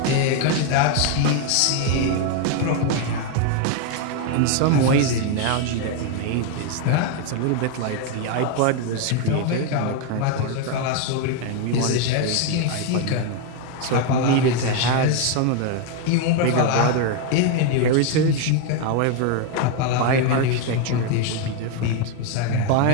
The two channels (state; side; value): different; both; correlation 0.01